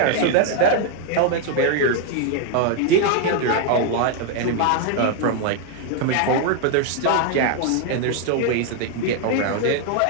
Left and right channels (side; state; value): both; different; correlation 0.00